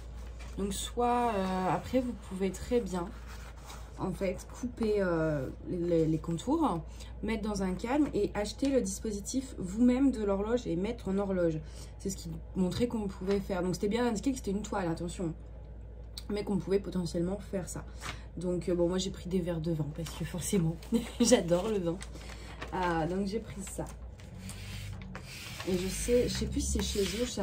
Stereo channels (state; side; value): identical; both; correlation 1.00